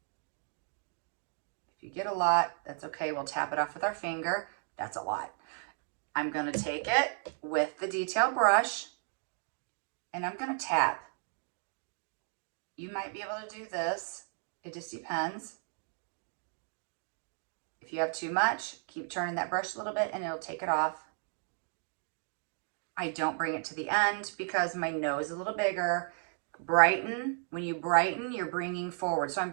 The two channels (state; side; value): silent; left; 55 dB below the other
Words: If you get a lot, that's okay. We'll tap it off with our finger. That's a lot. I'm gonna take it with the detail brush and I'm gonna tap. You might be able to do this. It just depends. If you have too much, keep turning that brush a little bit and it'll take it off. I don't bring it to the end because my nose is a little bigger. Brighten. When you brighten, you're bringing forward. So I'm